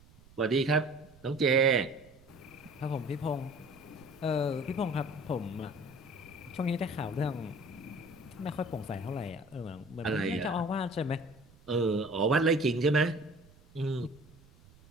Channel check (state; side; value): noise; right; rumble, 25 dB below the sound